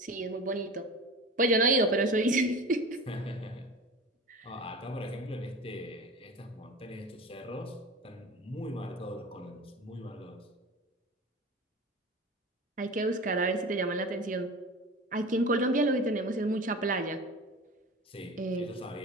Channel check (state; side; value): normal; both; correlation 0.34